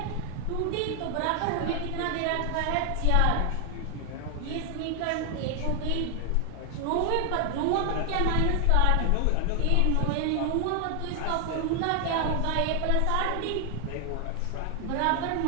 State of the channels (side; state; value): both; different; correlation 0.00